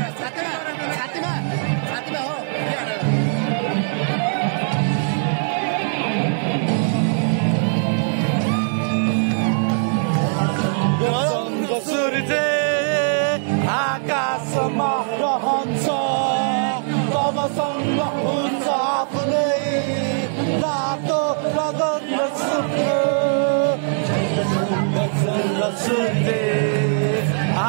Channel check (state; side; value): silent; left; digital silence